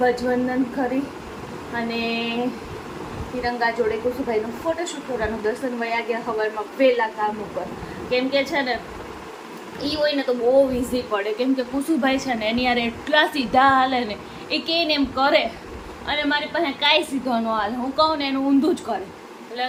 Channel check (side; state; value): both; identical; correlation 1.00